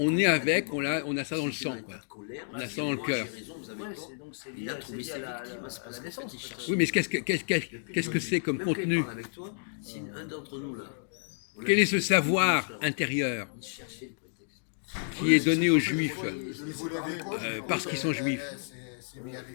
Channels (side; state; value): right; silent; digital silence